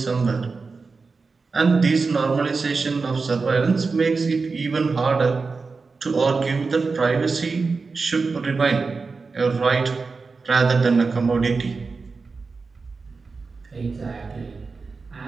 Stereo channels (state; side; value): quieter; left; 4.4 dB